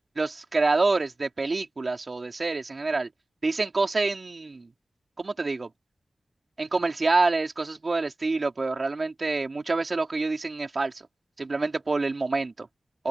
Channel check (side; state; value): left; quieter; 3.0 dB